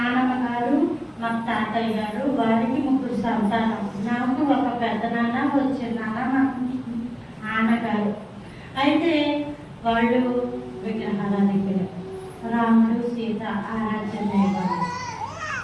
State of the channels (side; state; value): both; identical; correlation 1.00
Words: గారు, మా తాతయ్య గారు, వారికి 3 సంతానం. నాకు ఒక పెద్ద నాన్న, వచ్చిన నాన్న, మా నాన్నగారు. అయితే వాళ్ళు విగ్రహాల దగ్గర రాముడు సీత ఆరాధన.